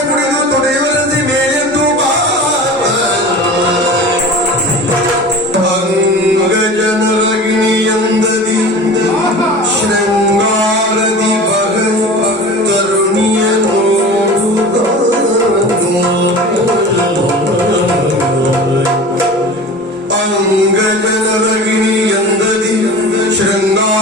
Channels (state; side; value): normal; both; correlation 0.36